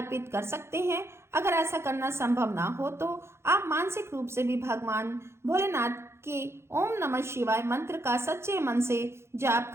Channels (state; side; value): late; left; 0.13 ms